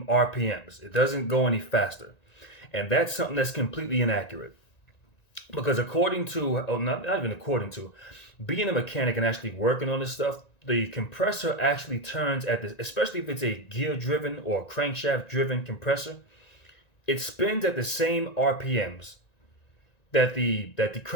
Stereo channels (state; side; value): late; right; 1.9 ms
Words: RPMs. It doesn't go any faster. And that's something that's completely inaccurate. Because according to, not even according to, being a mechanic and actually working on this stuff, the compressor actually turns at the, especially if it's a gear-driven or crankshaft-driven compressor, it spins at the same RPMs that the